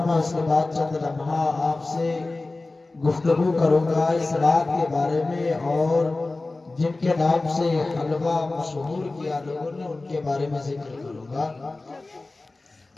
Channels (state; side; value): quieter; right; 3.2 dB